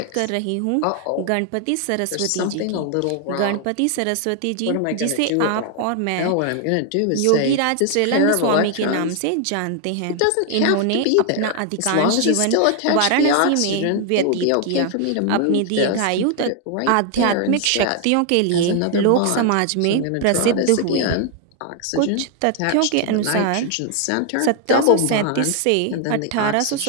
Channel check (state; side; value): different; both; correlation 0.00